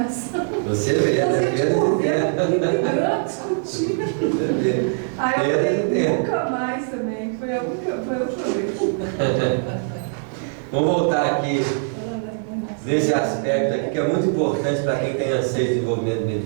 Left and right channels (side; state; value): left; silent; 60 dB below the other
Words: Você vê, brigando, discutindo. Aí eu falei, nunca mais também. Foi a última vez. Vamos voltar aqui nesse aspecto aqui, que é muito importante para quem tem anseio de desenvolvimento